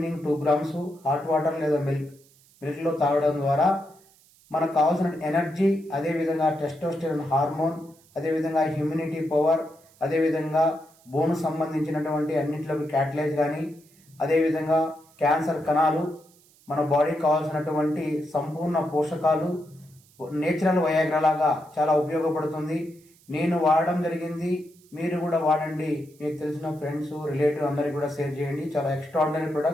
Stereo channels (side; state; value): right; noise; hiss, 29 dB below the sound